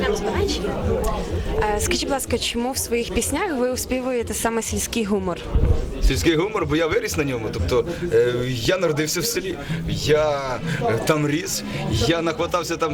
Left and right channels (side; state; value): both; identical; correlation 1.00